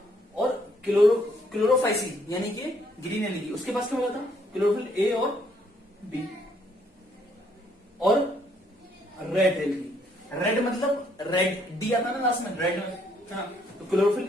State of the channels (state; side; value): normal; both; correlation 0.68